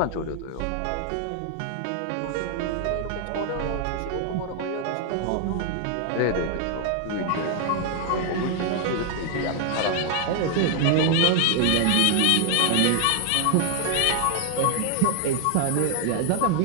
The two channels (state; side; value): different; both; correlation 0.00